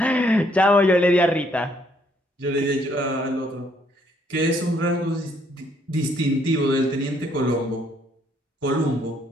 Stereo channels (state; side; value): normal; both; correlation 0.68